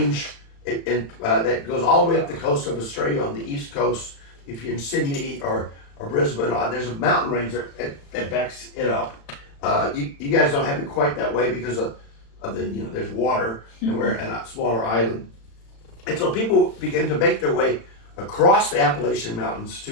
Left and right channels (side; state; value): right; late; 35 ms